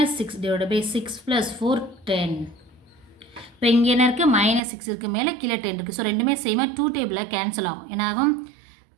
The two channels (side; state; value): left; drops out; at 4.6 s